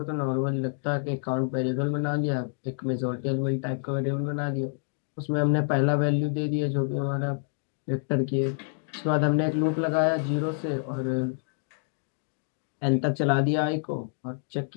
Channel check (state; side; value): silent; right; digital silence